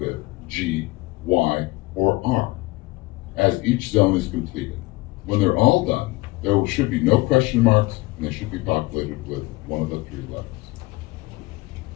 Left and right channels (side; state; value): right; quieter; 21.6 dB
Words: G, Y, or R as each zone is completed. When they're all done, there should be no question marks and they should be populated with one of the 3 letters.